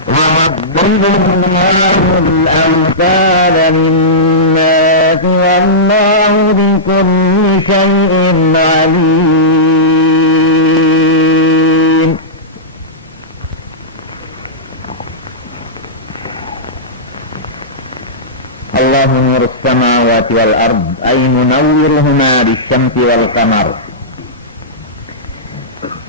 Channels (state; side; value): normal; both; correlation -0.16